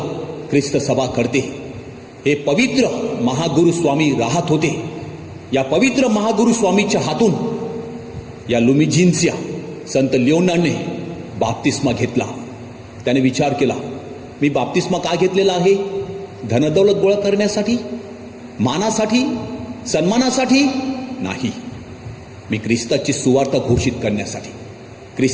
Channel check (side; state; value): both; identical; correlation 1.00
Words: ख्रिस्त सभा करते. हे पवित्र महागुरु स्वामी राहत होते. या पवित्र महागुरु स्वामीच्या हातून या लुमिझिनच्या संत लिओनार्डने बाप्तिस्मा घेतला. त्याने विचार केला, मी बाप्तिस्मा का घेतलेला आहे? धनदौलत गोळा करण्यासाठी, मानासाठी, सन्मानासाठी नाही. मी ख्रिस्ताची सुवार्ता घोषित करण्यासाठी,